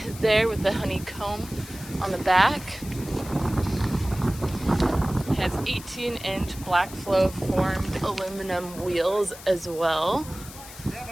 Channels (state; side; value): noise; left; hiss, 16 dB below the sound